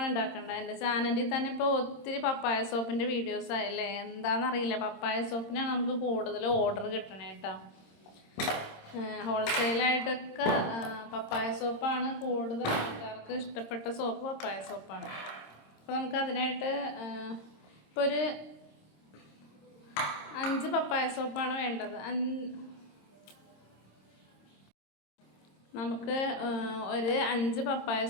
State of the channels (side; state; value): right; late; 26 ms